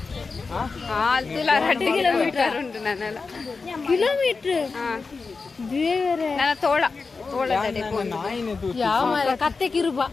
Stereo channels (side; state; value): right; quieter; 4.4 dB